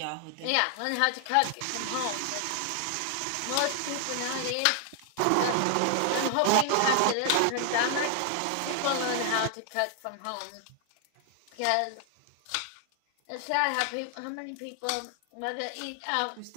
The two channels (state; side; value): different; both; correlation 0.00